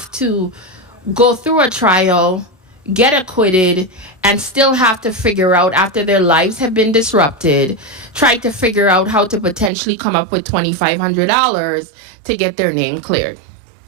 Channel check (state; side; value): drops out; left; at 9.7 s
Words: to go through a trial, get acquitted, and still have to figure out, after their lives have been disrupted, try to figure out how to potentially come up with $2,500 to get their name cleared?